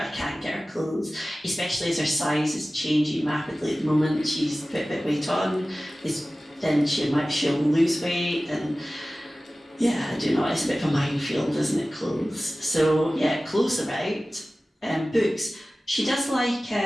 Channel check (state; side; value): normal; both; correlation 0.96